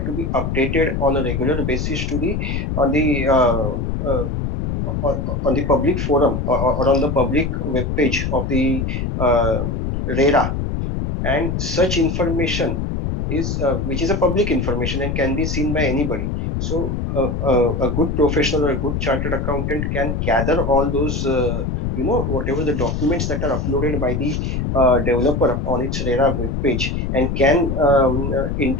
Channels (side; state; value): left; noise; rumble, 1 dB below the sound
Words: to be updated on a regular basis to the on the on the public forum or on the public web page of the RERA, and such information is which is a public information and can be seen by anybody. So a good professional or a good chartered accountant can gather all those whatever the documents that are uploaded by the developer on its RERA web page, and can